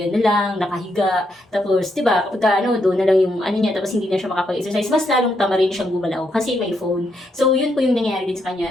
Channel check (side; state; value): both; normal; correlation 0.79